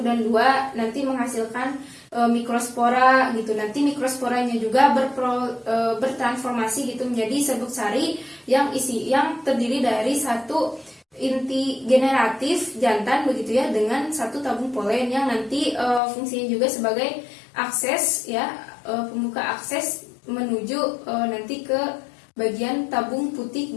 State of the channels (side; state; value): right; drops out; at 16.0 s